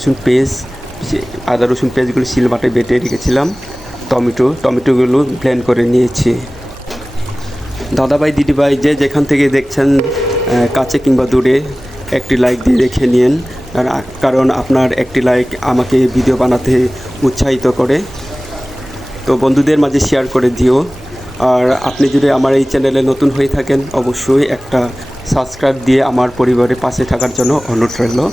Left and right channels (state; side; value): normal; both; correlation 0.97